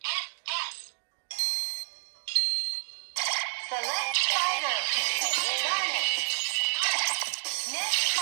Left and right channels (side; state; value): left; silent; digital silence